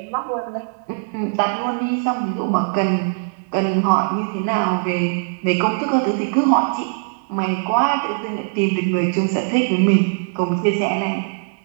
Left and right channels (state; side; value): silent; left; digital silence